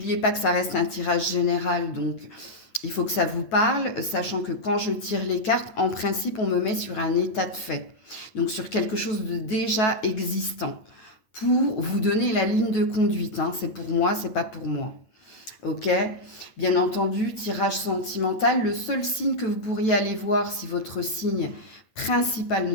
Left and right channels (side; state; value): right; late; 9.3 ms